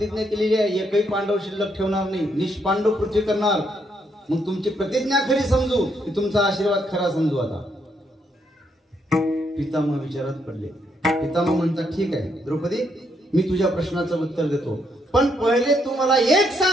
केलेली आहे, एकही पांडव शिल्लक ठेवणार नाही, निष्पांडव पृथ्वी करणार. मग तुमची प्रतिज्ञा खरी समजू की तुमचा आशीर्वाद खरा समजू? आता पितामह विचारात पडले. पितामह म्हणतात, ठीक आहे द्रौपदी, मी तुझ्या प्रश्नाचं उत्तर देतो, पण पहिले तू मला एक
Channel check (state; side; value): normal; both; correlation 0.75